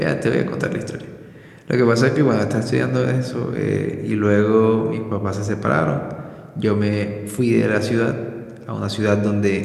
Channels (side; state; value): both; identical; correlation 1.00